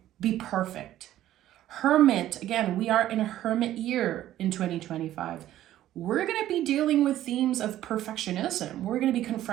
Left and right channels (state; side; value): quieter; left; 13.1 dB